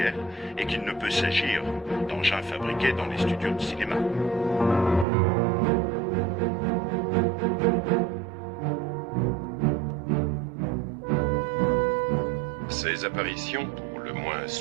et qu'il ne peut s'agir d'engins fabriqués dans les studios de cinéma. Ces apparitions, pour le moins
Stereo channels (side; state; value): left; drops out; at 5.1 s